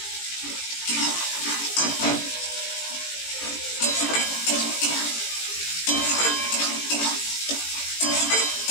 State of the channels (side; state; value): right; late; 18 ms